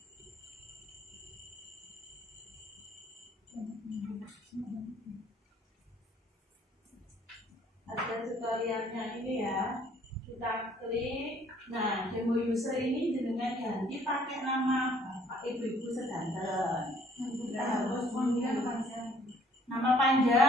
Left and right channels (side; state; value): both; normal; correlation 0.59